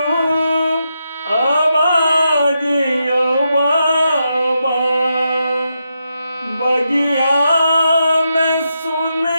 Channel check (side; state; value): both; inverted; correlation -0.84